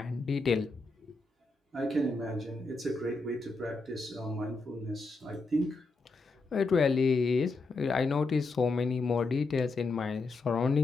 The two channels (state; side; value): quieter; right; 3.6 dB